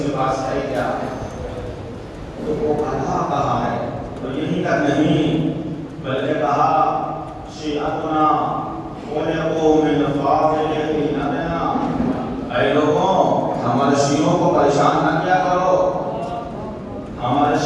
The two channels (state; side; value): identical; both; correlation 1.00